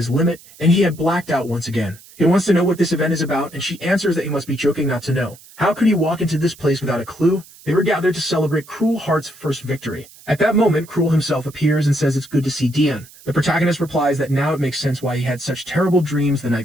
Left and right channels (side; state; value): right; noise; hiss, 22 dB below the sound